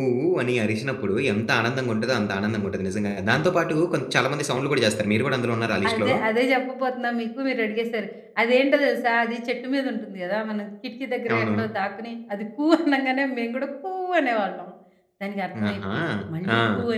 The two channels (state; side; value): identical; both; correlation 1.00